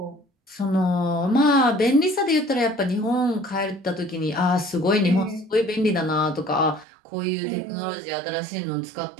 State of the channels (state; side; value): drops out; left; at 6.9 s